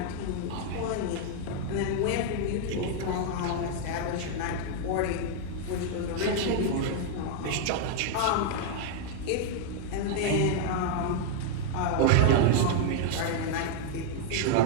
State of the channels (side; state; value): both; different; correlation 0.00